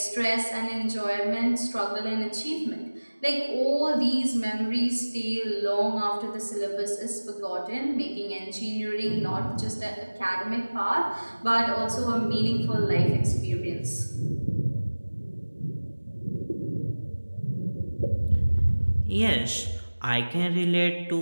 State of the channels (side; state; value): both; inverted; correlation -1.00